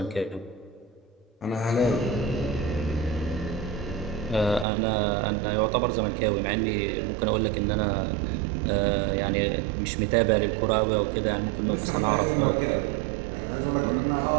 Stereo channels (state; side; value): drops out; left; at 4.7 s